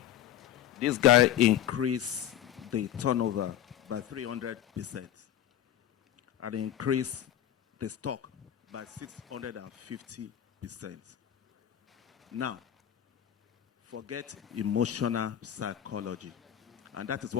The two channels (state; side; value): quieter; right; 11.1 dB